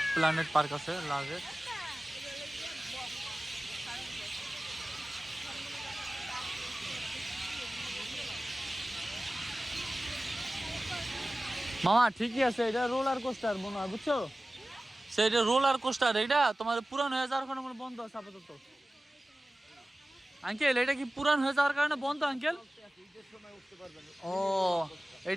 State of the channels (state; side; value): normal; both; correlation 0.97